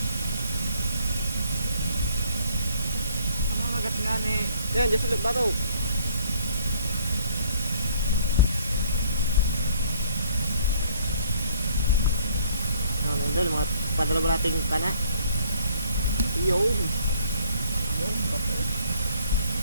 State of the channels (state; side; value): inverted; both; correlation -0.61